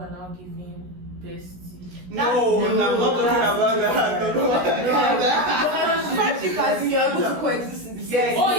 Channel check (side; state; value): left; late; 16 ms